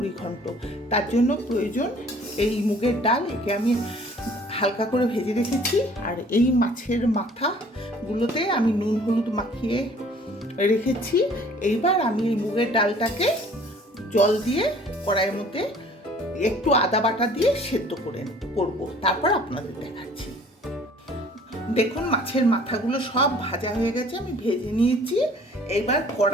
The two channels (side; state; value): both; normal; correlation 0.53